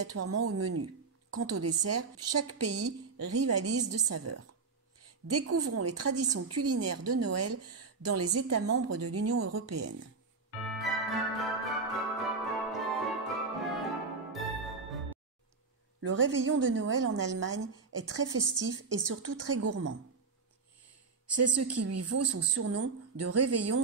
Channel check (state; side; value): quieter; left; 4.5 dB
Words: au menu. Quant au dessert, chaque pays rivalise de saveurs. Découvrons les traditions culinaires de Noël dans les États membres de l'Union européenne. Le réveillon de Noël en Allemagne est très festif et surtout très gourmand. C'est ce qui lui vaut son surnom de